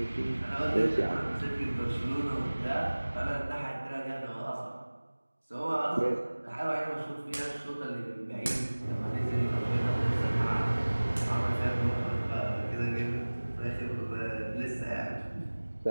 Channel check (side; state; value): both; inverted; correlation -1.00